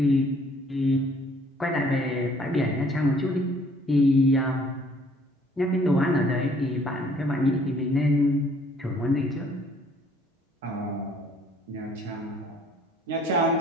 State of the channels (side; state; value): both; normal; correlation 0.60